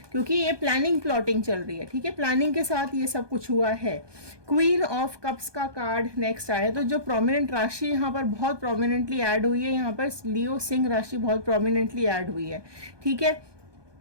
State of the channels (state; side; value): late; left; 1.2 ms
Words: क्योंकि ये प्लानिंग प्लॉटिंग चल रही है। ठीक है, प्लानिंग के साथ ये सब कुछ हुआ है। क्वीन ऑफ कप्स का कार्ड नेक्स्ट आया, तो जो प्रोमिनेंट राशि यहाँ पर बहुत प्रोमिनेंटली ऐड हुई है, यहाँ पर लियो सिंह राशि बहुत प्रोमिनेंटली ऐड हुई है। ठीक है,